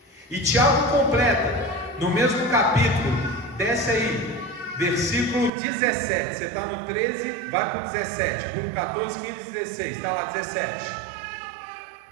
E Tiago completa no mesmo capítulo. Desce aí, versículo 17. Você está no 13, vai para o 17. Por 14, 15, 16. Está lá 17.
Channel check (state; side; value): drops out; left; at 5.5 s